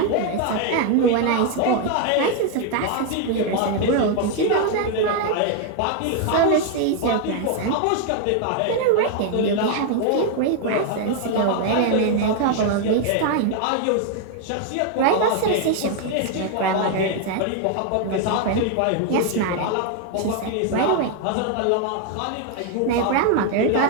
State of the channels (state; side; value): different; both; correlation 0.00